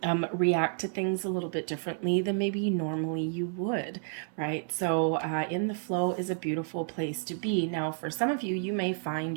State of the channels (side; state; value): left; silent; 58 dB below the other